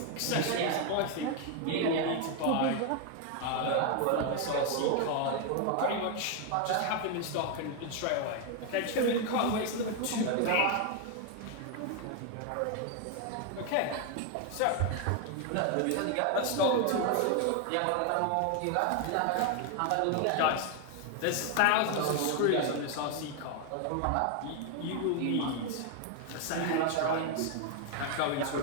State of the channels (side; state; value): both; different; correlation 0.01